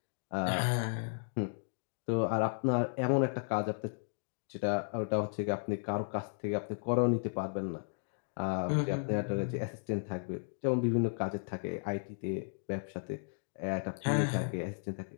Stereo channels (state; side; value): silent; right; digital silence